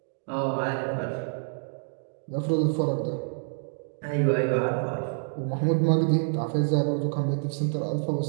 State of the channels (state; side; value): silent; left; digital silence